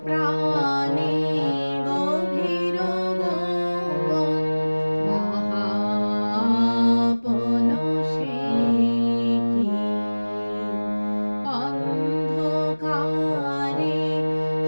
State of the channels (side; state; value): both; inverted; correlation -1.00